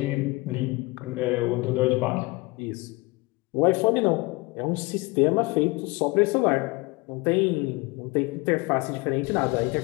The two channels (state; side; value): quieter; right; 24.3 dB